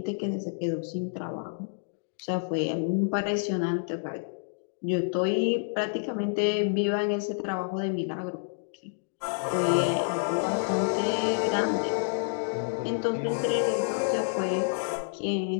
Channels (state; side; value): silent; right; digital silence